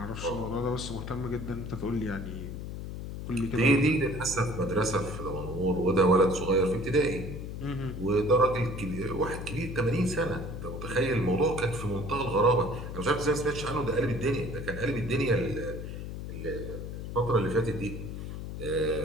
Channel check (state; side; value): noise; left; hum, 7 dB below the sound